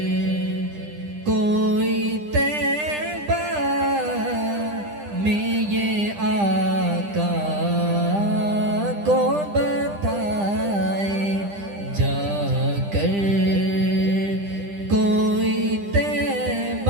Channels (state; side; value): late; left; 10 ms